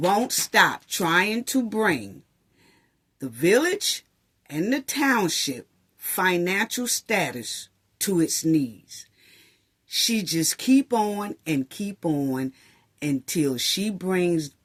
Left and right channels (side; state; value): both; identical; correlation 1.00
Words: stop trying to bring the village and the township financial status to its knees. She just keep on until she brings